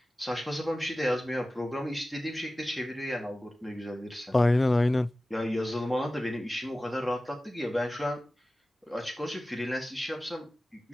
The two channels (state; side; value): normal; both; correlation 0.96